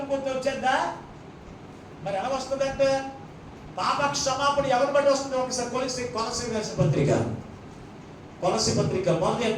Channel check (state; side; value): identical; both; correlation 1.00